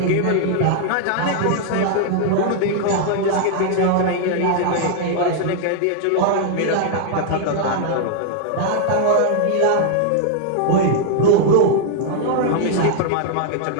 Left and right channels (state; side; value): different; both; correlation -0.01